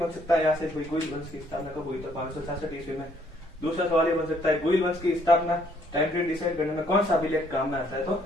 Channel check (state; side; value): normal; both; correlation 0.66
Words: सकता है यहाँ से, गुइल वंश की स्थापना कब हुई? तो 566 ईस्वी में। दूसरा सवाल ये बन सकता है, गुइल वंश की स्थापना टाइम पीरियड डिसाइड करने में कौन सा अभिलेख काम में आता है? तो